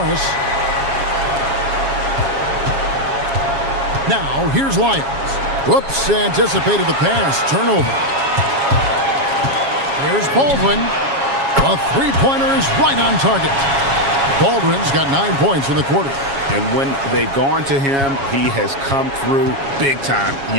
Now, here's Lyles. Whoops, anticipated the pass. Turnover. Here's Baldwin. A 3-pointer is right on target. Baldwin's got 9 points in the quarter. And when they've gone to him, he has come through big time.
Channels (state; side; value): late; left; 7.3 ms